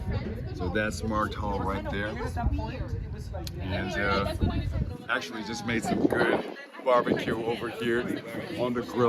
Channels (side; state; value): both; identical; correlation 1.00